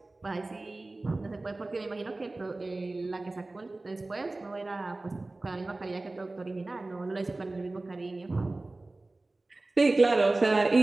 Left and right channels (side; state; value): left; quieter; 3.0 dB